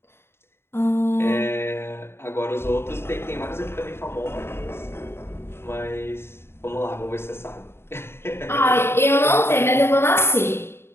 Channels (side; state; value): right; late; 0.12 ms